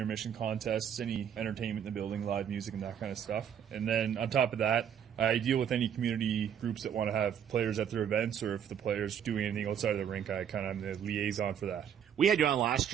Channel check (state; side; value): quieter; left; 8.7 dB